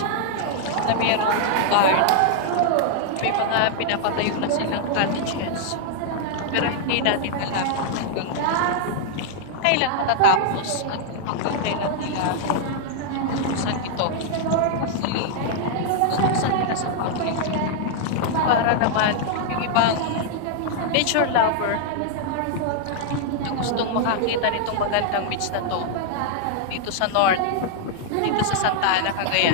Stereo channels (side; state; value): both; different; correlation -0.01